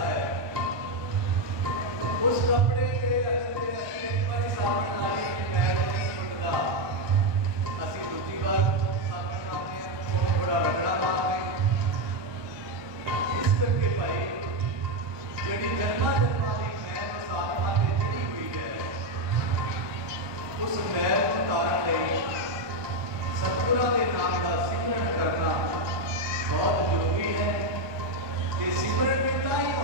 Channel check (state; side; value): late; left; 1.2 ms